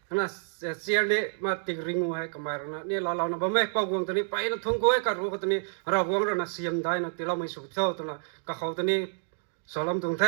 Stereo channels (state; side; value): silent; left; digital silence